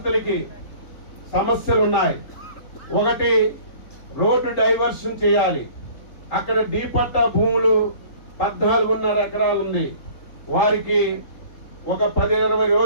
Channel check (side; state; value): right; late; 3.8 ms